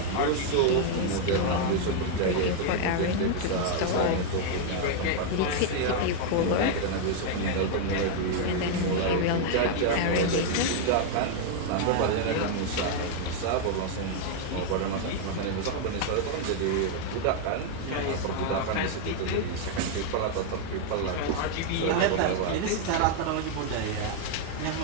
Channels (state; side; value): different; both; correlation 0.00